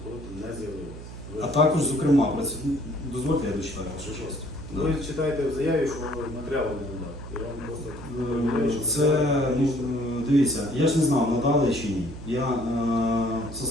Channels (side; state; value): right; noise; hum, 13 dB below the sound